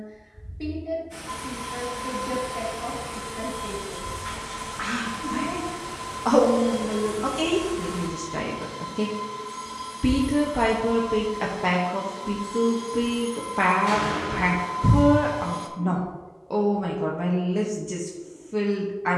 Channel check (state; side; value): identical; both; correlation 1.00